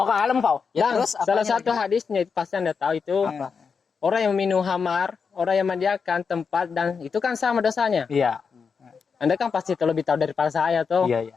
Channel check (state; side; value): quieter; right; 5.7 dB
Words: kalem kau. Ya, terus salah apanya satu hadisnya itu pasti Anda tahu itu orang yang minum khamar, orang yang menyediakan tempat dan itu kan sama dosanya. Iya. Anda kan pasti lebih tahu daripada saya tuh.